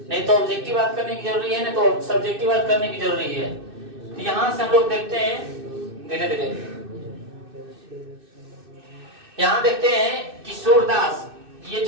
नहीं तो ऑब्जेक्टिव बात करने की जरूरी है, नहीं तो सब्जेक्टिव बात करने की जरूरी है। तो यहाँ से हम लोग देखते हैं धीरे धीरे। यहाँ देखते हैं कि सूरदास, ये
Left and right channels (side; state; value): left; late; 2.6 ms